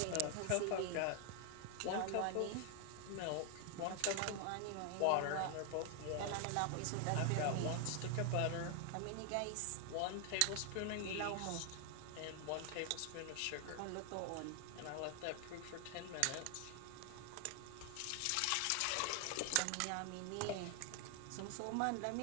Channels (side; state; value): both; different; correlation 0.00